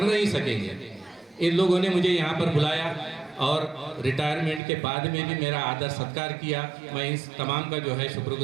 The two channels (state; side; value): drops out; left; at 4.6 s